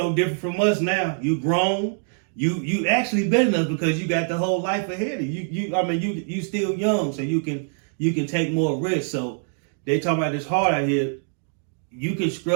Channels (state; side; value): silent; left; 63 dB below the other